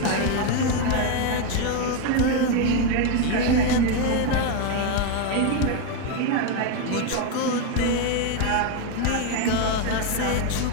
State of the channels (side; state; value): both; different; correlation 0.01